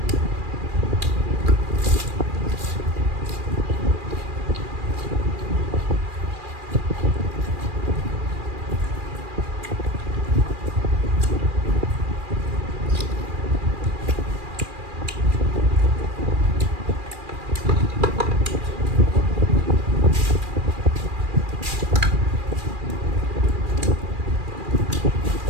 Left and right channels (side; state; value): left; late; 2.4 ms